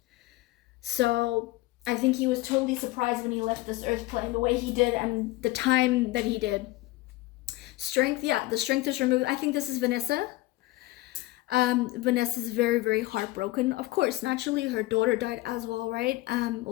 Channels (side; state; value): right; quieter; 18.6 dB